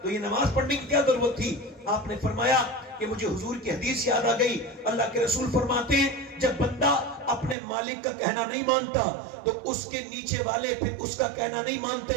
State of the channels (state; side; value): drops out; left; at 7.6 s